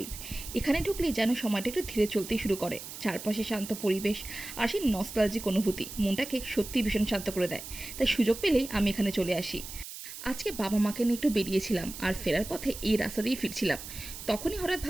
এখানে ঢুকলেই যেন সময়টা একটু ধীরে চলতেই শুরু করে। চারপাশে শান্ত পরিবেশ আর সেই নস্টালজিক অনুভূতি মনটাকে সত্যিই ভীষণ শান্ত করে দেয়। তাই সুযোগ পেলেই আমি এখানে চলে আসি। আজকে বাবা মাকে নিয়ে একটু বেরিয়েছিলাম আর ফেরার পথে এই রাস্তা দিয়েই ফিরছিলাম। তখনই হঠাৎ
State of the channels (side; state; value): right; noise; hiss, 11 dB below the sound